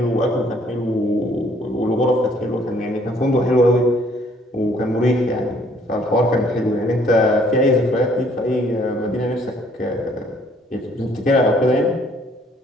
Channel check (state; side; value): normal; both; correlation 0.62